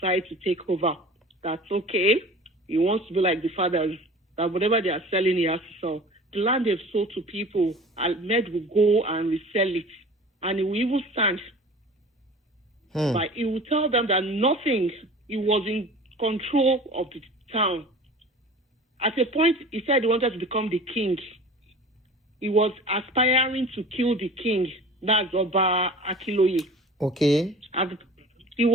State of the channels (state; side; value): normal; both; correlation 0.41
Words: to take over. That's okay. He wants to be like the fathers, that whatever they are selling, he has to sell. The land they've sold to people, Ahmed will go and resell it. And he will even stand. But he will tell them that nothing, he was in control of the town. At a point, he said he wanted to become the king. He was aspiring to kill the king. That's Oba Akiloye. Okay. He